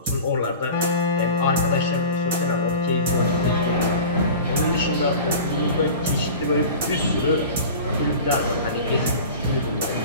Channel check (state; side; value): inverted; both; correlation -0.36